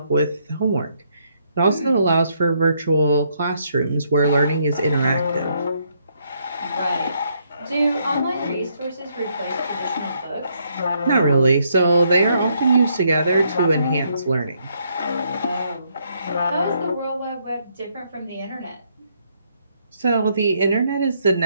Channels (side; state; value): both; inverted; correlation -0.73